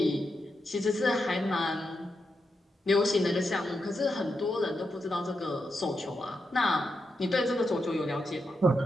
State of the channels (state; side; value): normal; both; correlation 0.85